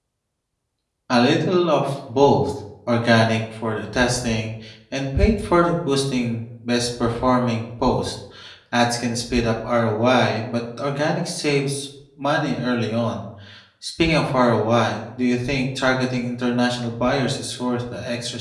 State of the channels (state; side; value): identical; both; correlation 1.00